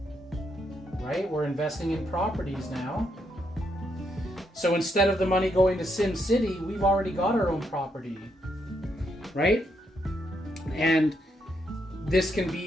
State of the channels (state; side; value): normal; both; correlation 0.78